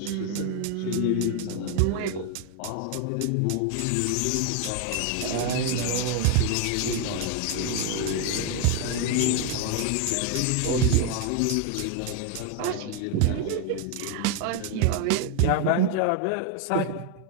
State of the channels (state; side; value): different; both; correlation 0.01